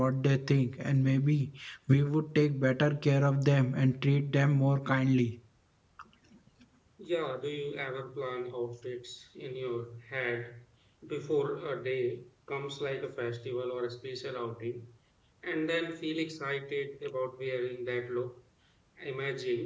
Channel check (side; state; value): both; identical; correlation 1.00